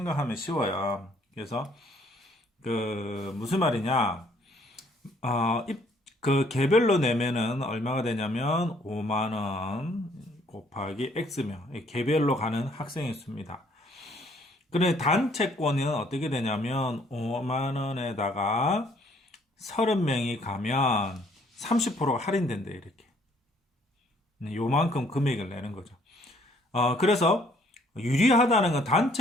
쉬워요. 그래서 무슨 말이냐? 개별로 내면은 얼마가 되냐면 5만 원 곱하기 x면 개별로 가는 학생의 수입니다. 그런데 단체권은 어떻게 되냐면 5만 원에다가 30명이 가면 30%가 할인된대 이렇게. 요만큼 금액을 내는 거죠. 그래서 유리하다는 건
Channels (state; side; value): normal; both; correlation 0.63